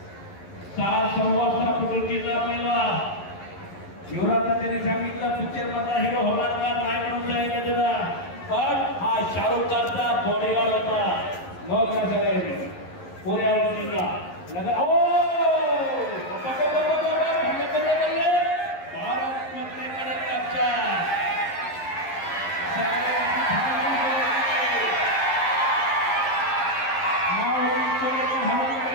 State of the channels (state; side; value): late; right; 11 ms